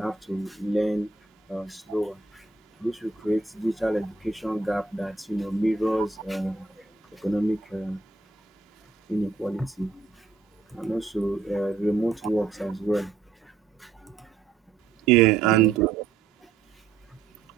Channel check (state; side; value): quieter; left; 4.4 dB